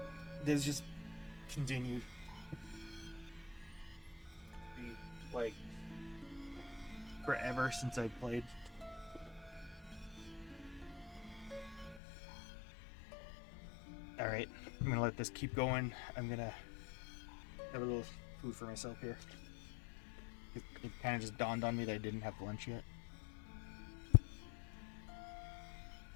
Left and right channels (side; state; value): right; drops out; at 12.0 s